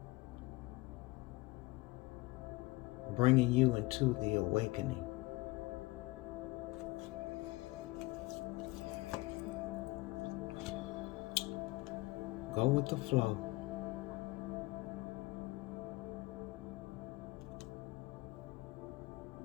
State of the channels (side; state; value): right; quieter; 22.0 dB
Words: Bringing you into the awakening. Go with the flow.